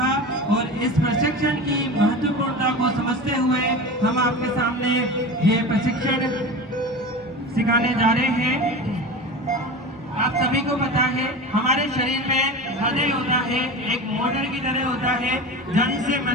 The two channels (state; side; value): normal; both; correlation 0.30